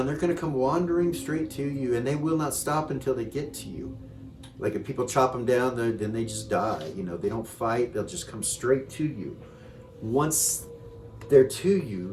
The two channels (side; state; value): both; identical; correlation 1.00